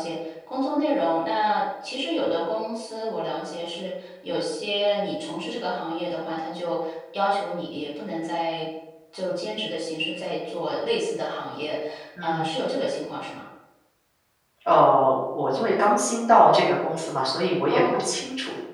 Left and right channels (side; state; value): both; identical; correlation 1.00